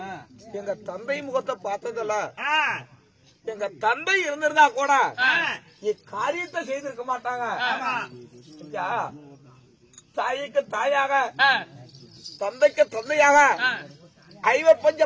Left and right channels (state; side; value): identical; both; correlation 1.00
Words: எங்க தந்தை முகத்தை பார்த்ததில்ல. எங்க தந்தை இருந்திருந்தா கூட இக்காரியத்தை செய்திருக்க மாட்டாங்க. தாய்க்கு தாயாக தந்தைக்கு தந்தையாக ஐவப்பஞ்ச